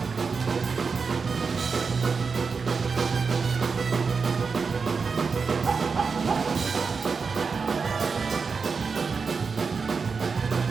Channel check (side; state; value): left; quieter; 5.1 dB